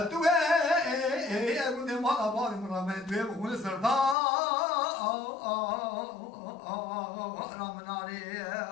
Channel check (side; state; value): right; drops out; at 4.2 s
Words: توي أقول لي ما أبغى مرامي توي بقول سردا رامناري